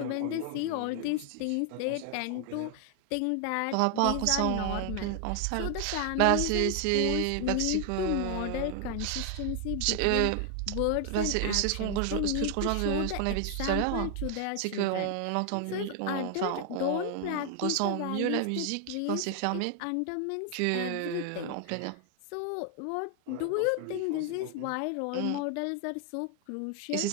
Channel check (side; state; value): both; different; correlation 0.00